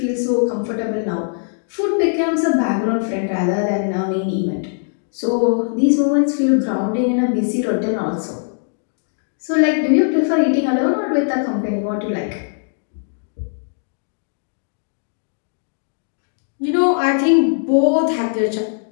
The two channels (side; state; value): right; silent; digital silence